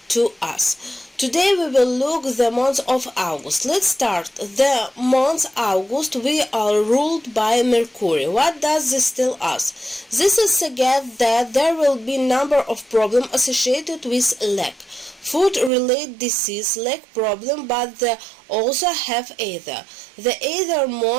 to us? Today we will look the month of August. Let's start. The month August we are ruled by Mercury. What does this tell us? This is suggests that there will be number of problems associated with lack. Food-related disease lack problem, but they also have ether. The ether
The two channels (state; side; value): drops out; left; at 15.7 s